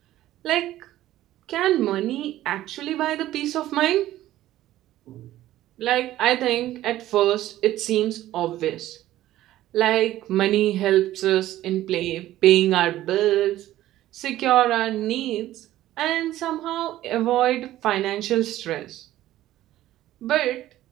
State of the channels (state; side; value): quieter; left; 14.4 dB